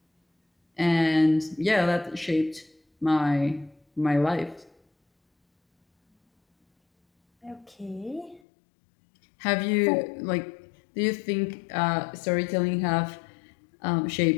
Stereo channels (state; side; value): drops out; right; at 8.4 s